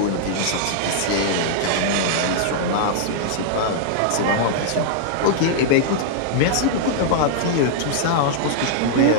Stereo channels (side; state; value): both; different; correlation -0.01